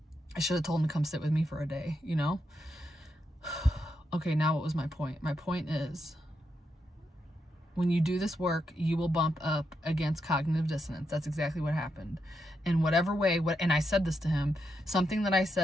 should have told them to come sit with me for a day, you know. Okay, now what was my point? My point is, when you do this work, you will bump up against cognitive dissonance. That's exactly what happened. In whatever way, and I said this to him, something that I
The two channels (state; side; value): normal; both; correlation 0.83